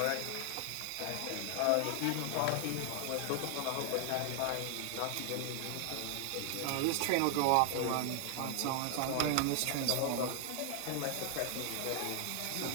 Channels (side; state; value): both; different; correlation 0.00